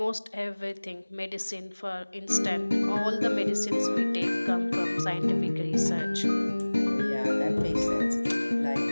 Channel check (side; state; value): both; inverted; correlation -1.00